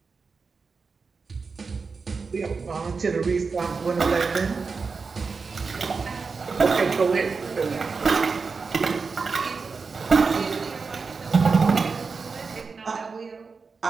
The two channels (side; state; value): left; quieter; 4.8 dB